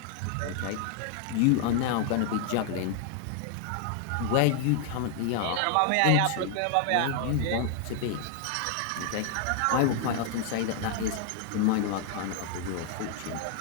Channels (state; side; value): different; both; correlation 0.00